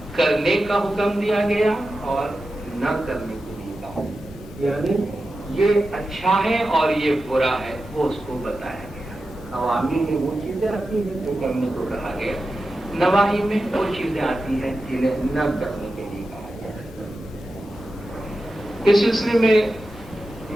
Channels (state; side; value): normal; both; correlation 0.92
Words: کرنے کا حکم دیا گیا اور نہ کرنے کو بھی کہا، یعنی یہ اچھا ہے اور یہ برا ہے وہ اس کو بتایا گیا۔ اوامر میں وہ چیزیں آتی ہیں جو کرنے کو کہا گیا، نواہی میں وہ چیزیں آتی ہیں جنہیں نہ کرنے کے لیے کہا گیا۔ اس سلسلے میں